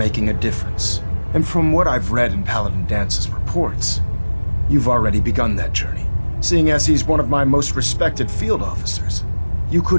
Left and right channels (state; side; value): inverted; both; correlation -1.00